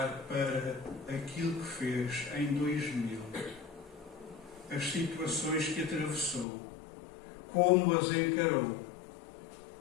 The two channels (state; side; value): drops out; right; at 6.5 s